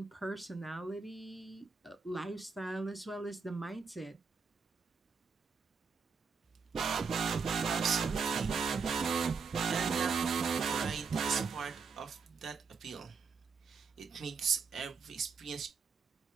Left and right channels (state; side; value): quieter; left; 5.3 dB